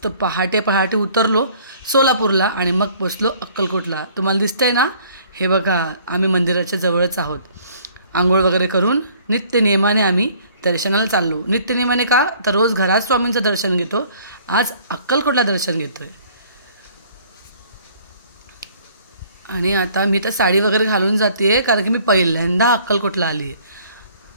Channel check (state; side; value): inverted; both; correlation -0.57